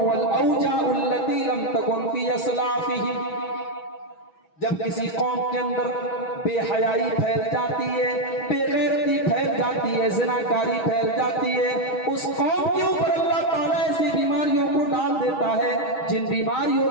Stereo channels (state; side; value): late; right; 6.3 ms